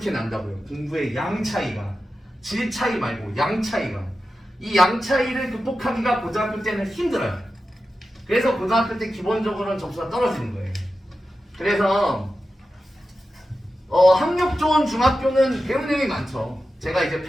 난다고요. 공부의 양 차이가 질 차이 말고 양 차이가 이 양 차이를 극복하기가 고등학교 때는 힘들어요. 그래서 고등학교 때 기본적으로는 점수가 떨어지는 거예요. 그래서 학력 좋은 중학교는 배우는 내용이 많죠. 제가 이제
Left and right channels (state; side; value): normal; both; correlation 0.92